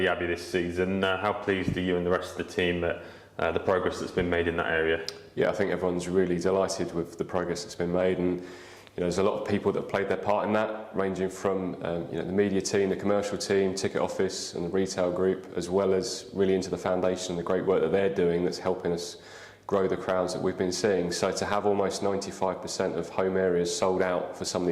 Abbey this season. How pleased are you and the rest of the team at the progress that's been made in that area? Yeah, I think everyone's really delighted with the progress that's been made, and there's a lot of people that have played their part in that, ranging from the media team, the commercial team, ticket office and the retail group, as well as really into the foundation, the great work that they're doing that's helping us grow the crowds that we've been seeing. So to have almost 95% of home areas sold out for some of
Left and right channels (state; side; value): identical; both; correlation 1.00